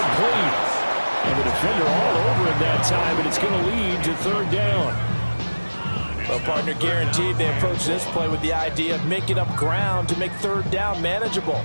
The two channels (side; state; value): both; inverted; correlation -1.00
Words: And the defender all over him that time, and it's going to lead to 3rd down. Well, partner, guaranteed they approach this play with the idea of making up ground to make 3rd down manageable.